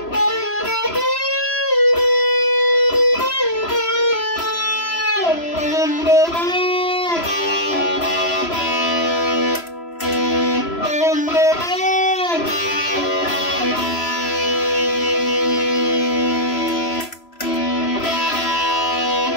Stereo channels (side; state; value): right; late; 3.0 ms